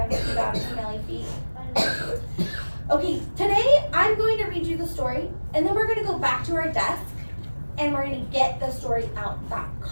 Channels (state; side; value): inverted; both; correlation -1.00